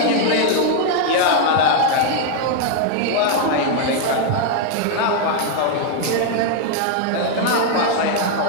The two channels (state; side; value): different; both; correlation 0.00